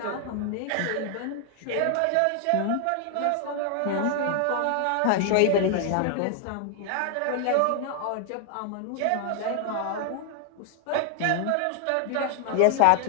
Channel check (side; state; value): both; different; correlation 0.00